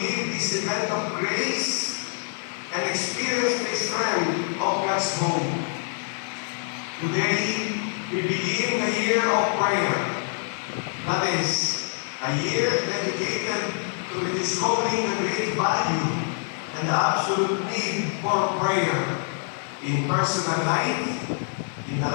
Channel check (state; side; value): silent; right; 60 dB below the other